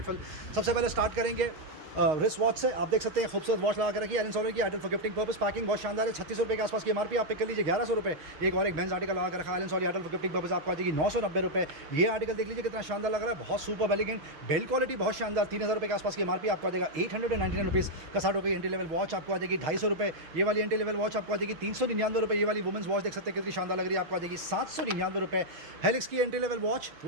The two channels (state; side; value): late; left; 6.4 ms